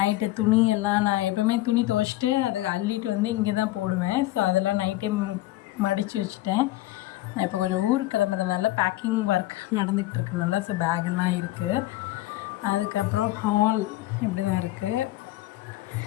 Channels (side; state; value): right; quieter; 16.6 dB